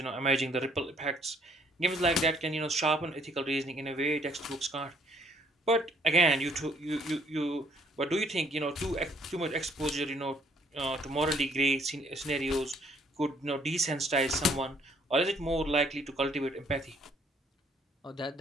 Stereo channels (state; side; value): normal; both; correlation 0.64